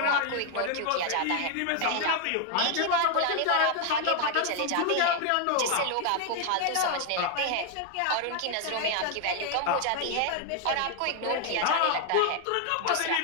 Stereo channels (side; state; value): both; different; correlation 0.00